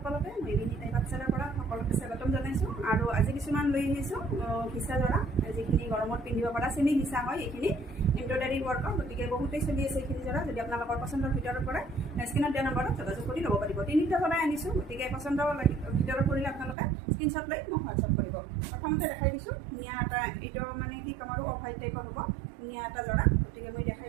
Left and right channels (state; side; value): drops out; left; at 16.8 s